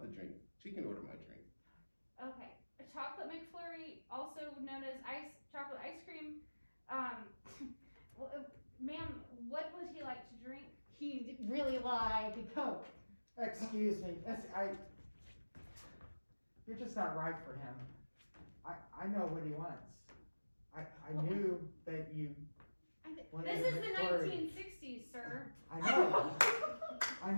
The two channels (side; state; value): both; inverted; correlation -1.00